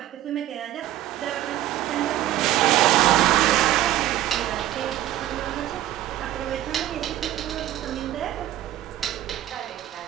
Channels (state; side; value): quieter; left; 13.5 dB